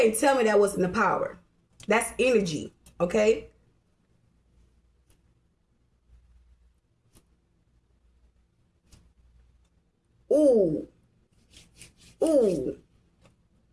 tell me that wasn't the power. That's energy. Okay. Ooh, ooh.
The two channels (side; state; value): both; identical; correlation 1.00